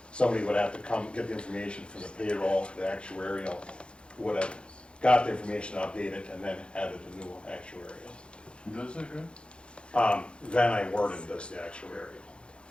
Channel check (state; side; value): late; right; 0.056 ms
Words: somebody would have to come get the information from the payroll, the actuarial, who would have got the information updated and then added a new actuarial. Who does that, good? Van I. Worden does the actuarial.